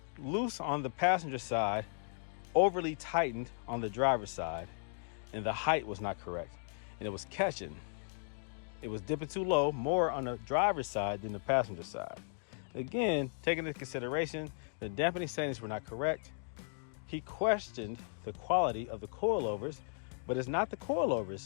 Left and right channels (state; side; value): silent; right; digital silence